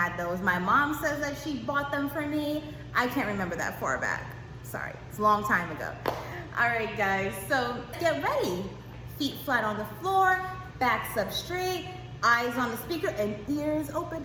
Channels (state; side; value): identical; both; correlation 1.00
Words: those. My mom says that she bought them for me. I can't remember that far back. Sorry, it's a long time ago. All right, guys, so get ready. Feet flat on the floor, backs up straight, eyes on the speaker, and ears open.